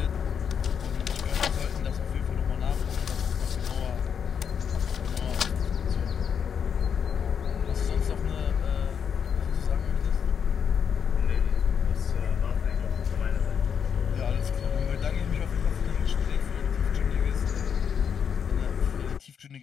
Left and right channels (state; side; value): quieter; right; 7.4 dB